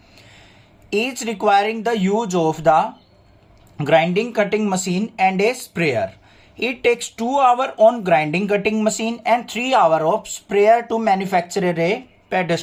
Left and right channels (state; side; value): identical; both; correlation 1.00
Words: Each requiring the use of the grinding cutting machine and a sprayer. It takes 2 hours on grinding cutting machine and 3 hours of sprayer to manufacture a